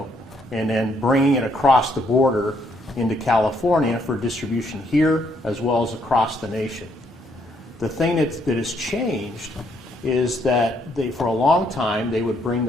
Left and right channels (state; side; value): normal; both; correlation 0.71